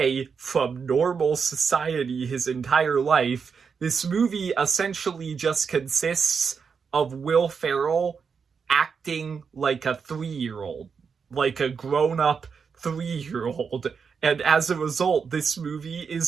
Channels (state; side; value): quieter; left; 5.9 dB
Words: from normal society his entire life, this movie essentially just consists of Will Ferrell acting like a 3-year-old, like a grown-up 3-year-old. And as a result, this movie